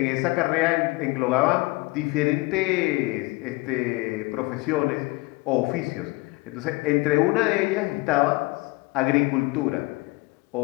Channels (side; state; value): right; quieter; 23.3 dB